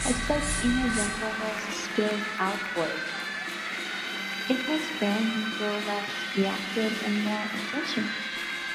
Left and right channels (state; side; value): identical; both; correlation 1.00